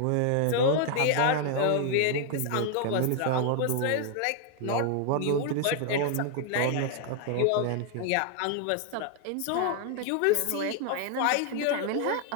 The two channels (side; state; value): both; different; correlation 0.00